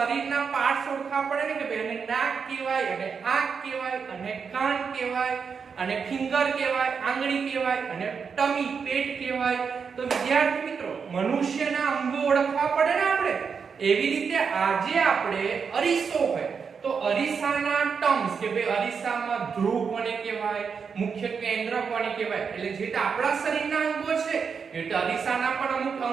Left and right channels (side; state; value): left; quieter; 6.0 dB